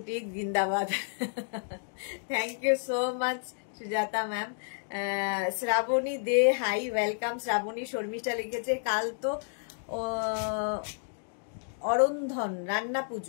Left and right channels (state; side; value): silent; right; digital silence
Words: জিন্দাবাদ। Thank you so much Sujata ma'am. Shrabani De hi, welcome Shrabani. Sharmistha লিখেছে কাল তো অরন্ধন রান্না